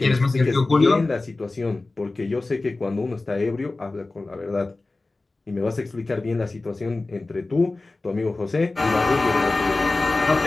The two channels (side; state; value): right; quieter; 3.2 dB